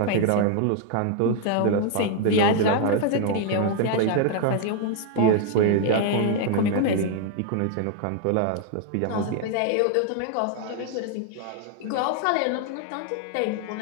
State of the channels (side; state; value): both; different; correlation 0.00